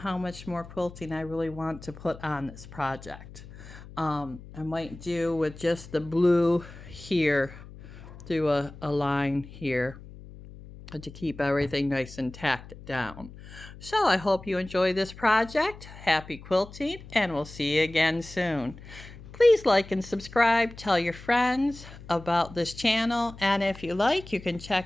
much more quilting I really want to put on this project. I might do with just the blue here, do a line here to keep everything nice and tacked down. So I hope you enjoy this project. Happy quilting, and we'll see you again soon. Please like and subscribe. Tell your friends about this channel, and if you like, you can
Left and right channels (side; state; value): left; noise; hum, 17 dB below the sound